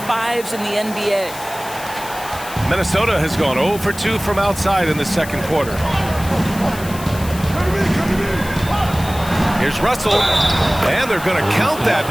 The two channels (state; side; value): noise; left; hiss, 14 dB below the sound